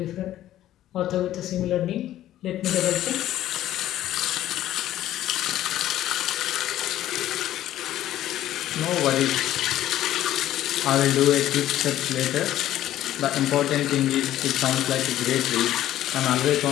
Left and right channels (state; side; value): quieter; right; 13.1 dB